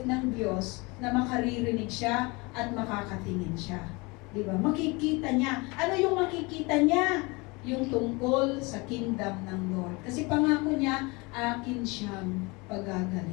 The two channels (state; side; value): quieter; right; 26.3 dB